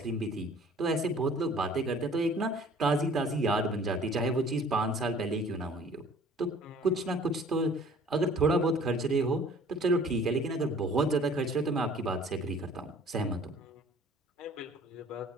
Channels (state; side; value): normal; both; correlation 0.52